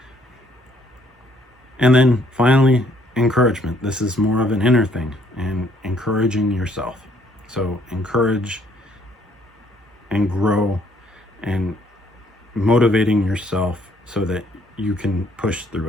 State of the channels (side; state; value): both; normal; correlation 0.65